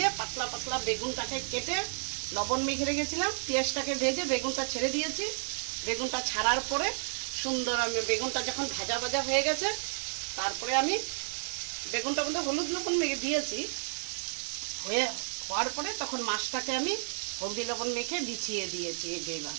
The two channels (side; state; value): left; silent; 57 dB below the other